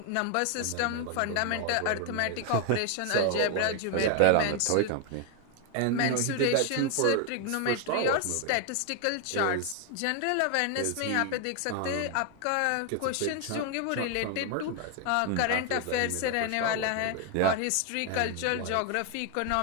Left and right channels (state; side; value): different; both; correlation 0.00